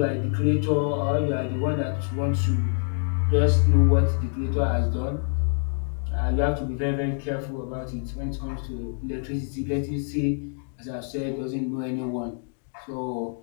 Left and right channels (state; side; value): silent; right; 58 dB below the other